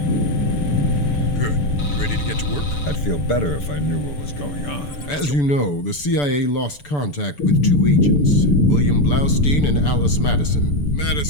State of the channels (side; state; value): right; late; 6.9 ms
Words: I'd feel better if I knew what was going on. As you know, the CIA lost contact with two agents, William Blaustein and Alice Madison.